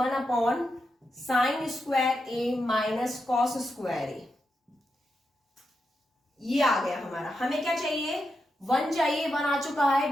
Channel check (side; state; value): both; normal; correlation 0.86